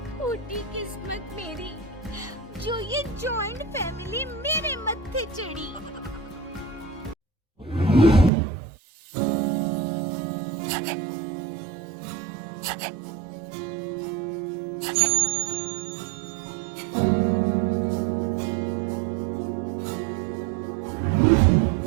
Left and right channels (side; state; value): left; drops out; at 8.3 s